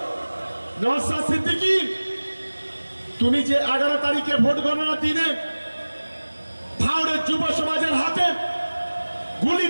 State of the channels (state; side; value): inverted; both; correlation -1.00